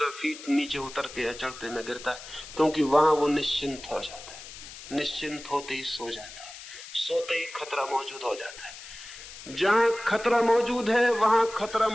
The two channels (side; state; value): left; noise; hiss, 14 dB below the sound